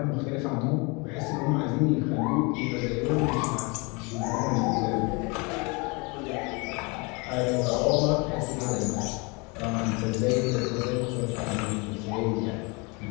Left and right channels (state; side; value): quieter; right; 29.3 dB